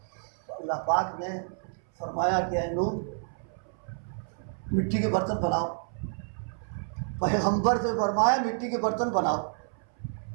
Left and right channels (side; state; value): left; silent; 58 dB below the other